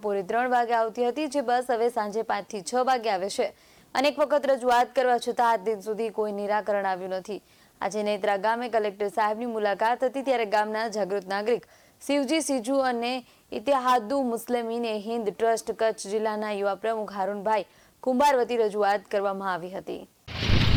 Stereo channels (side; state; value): both; identical; correlation 1.00